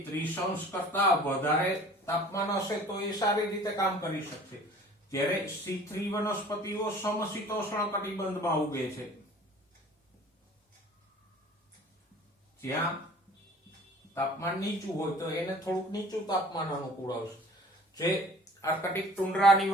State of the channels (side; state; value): both; normal; correlation 0.47